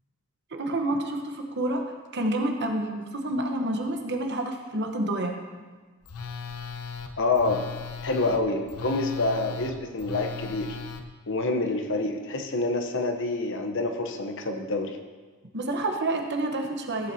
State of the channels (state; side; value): normal; both; correlation 0.11